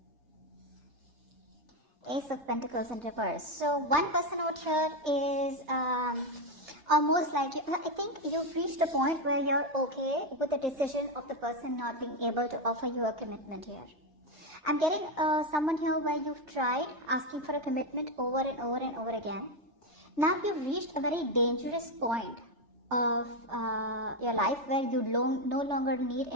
Ace of Pentacles in reverse. So one person out here is almost like, I think you've reached a point where you're okay with the decision of the person not being able to offer you a commitment here. I'm getting someone here where you've tried asking for a commitment over and over and over again. Now you've reached a very dangerous point of your life where you no longer need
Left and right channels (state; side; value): late; left; 3.3 ms